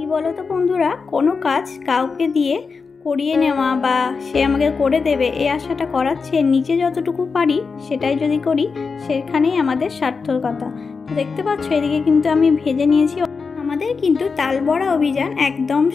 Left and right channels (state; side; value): quieter; right; 4.9 dB